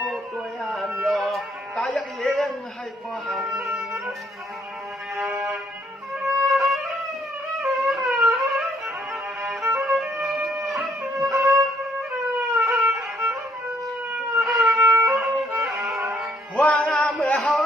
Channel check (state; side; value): normal; both; correlation 0.68